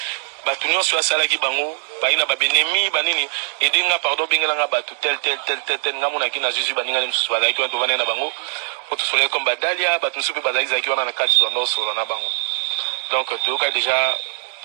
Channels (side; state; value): left; silent; digital silence